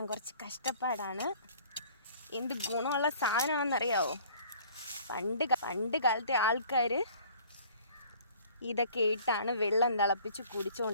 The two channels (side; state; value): both; inverted; correlation -0.52